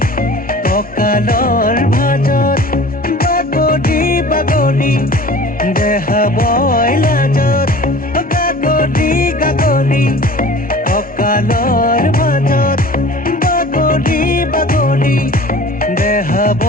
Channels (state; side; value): normal; both; correlation 0.43